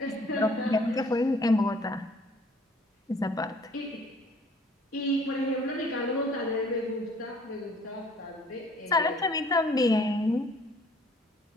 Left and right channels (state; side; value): normal; both; correlation 0.57